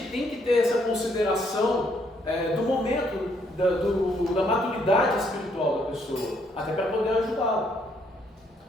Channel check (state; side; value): normal; both; correlation 0.70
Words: tem que ter essa consideração do momento, da maturidade espiritual da pessoa, até para poder ajudá-la.